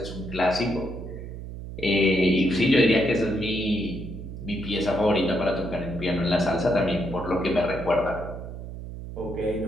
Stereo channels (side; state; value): right; noise; hum, 10 dB below the sound